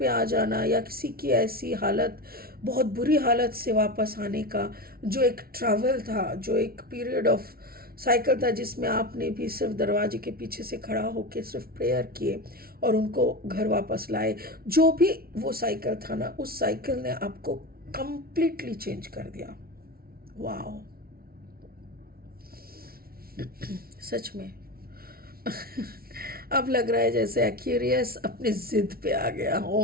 आ जाना, या किसी की ऐसी हालत, बहुत बुरी हालत से वापस आने का, जो एक ट्रैवल था, जो एक पीरियड ऑफ साइकिल था, जिसमें आपने भी सिर्फ दरवाजे के पीछे से खड़ा होकर सिर्फ प्रेयर किए और उनको घर वापस लाए। जो भी वो साइकिल था ना, उस साइकिल ने आपको कंप्लीटली चेंज कर दिया। वाओ, सच में अब लग रहा है जैसे एक्यूरियस अपनी जिद पे आ गया।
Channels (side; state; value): left; late; 0.44 ms